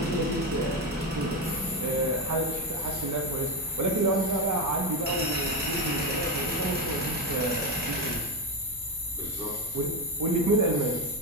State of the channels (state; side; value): normal; both; correlation 0.12